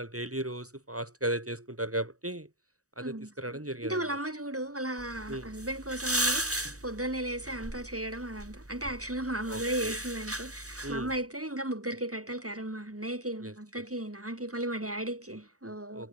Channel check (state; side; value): late; left; 0.66 ms